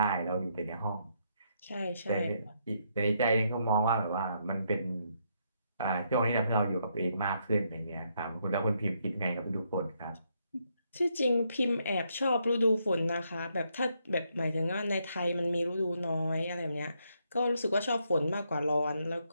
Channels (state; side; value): inverted; both; correlation -0.76